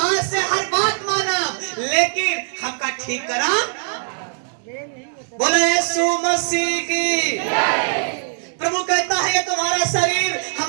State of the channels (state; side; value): silent; left; digital silence